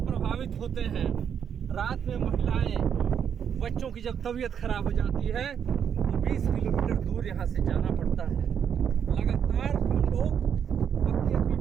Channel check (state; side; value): quieter; left; 8.0 dB